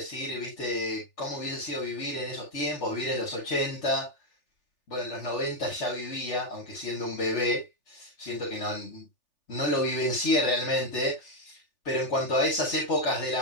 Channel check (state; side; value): late; right; 3.4 ms